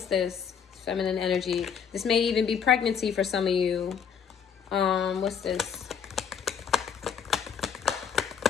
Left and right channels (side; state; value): right; quieter; 7.4 dB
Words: this? Feminine energy. This may even be pregnancy for some of you. What's this?